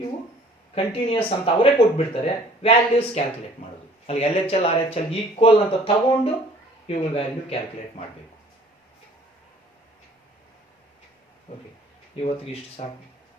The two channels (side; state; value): both; normal; correlation 0.53